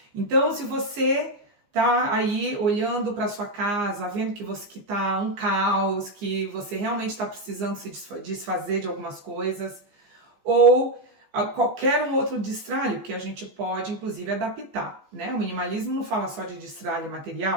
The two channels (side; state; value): left; late; 15 ms